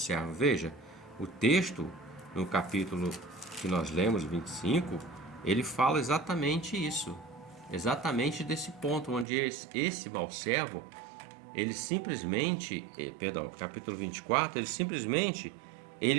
Veja, o texto, no capítulo que nós lemos, 25, ele fala exatamente isso. Exatamente desse ponto, onde esse mau servo, ele simplesmente, capítulo 24,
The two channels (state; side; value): drops out; left; at 9.2 s